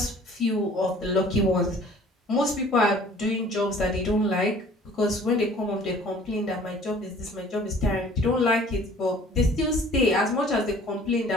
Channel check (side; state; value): both; normal; correlation 0.51